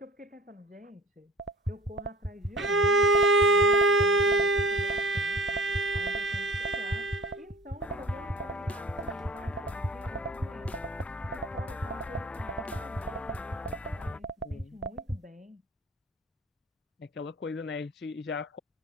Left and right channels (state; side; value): normal; both; correlation 0.44